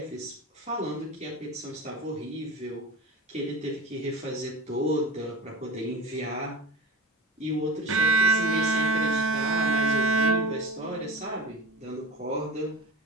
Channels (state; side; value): normal; both; correlation 0.32